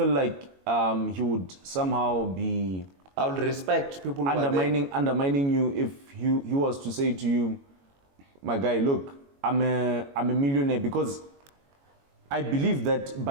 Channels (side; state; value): left; late; 22 ms